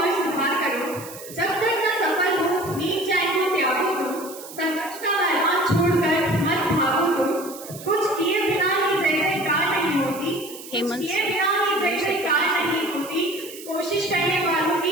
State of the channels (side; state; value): right; noise; hiss, 15 dB below the sound